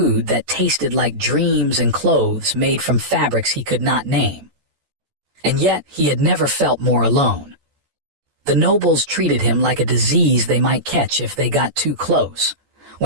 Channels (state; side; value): late; left; 14 ms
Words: that tasted like dreams and clothes made from fabrics he could not name. And yet he had never felt more alone. The nobles treated him like a disease they might catch if they got too close.